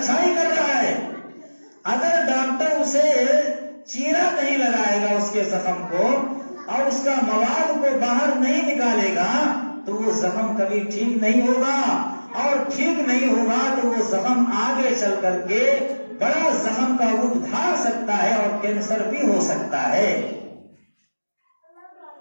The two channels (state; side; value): inverted; both; correlation -1.00